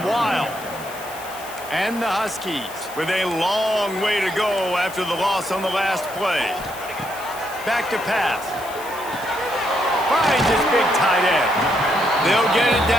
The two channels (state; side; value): noise; left; hiss, 16 dB below the sound